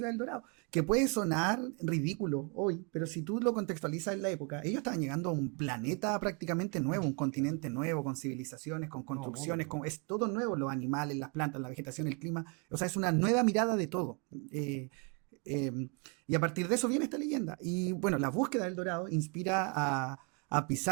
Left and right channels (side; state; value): left; quieter; 34.6 dB